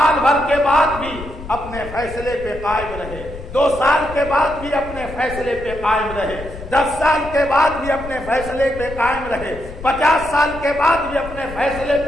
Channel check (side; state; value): left; noise; rumble, 12 dB below the sound